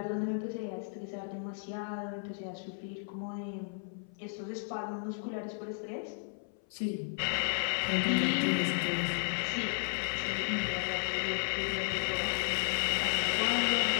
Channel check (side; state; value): right; silent; 55 dB below the other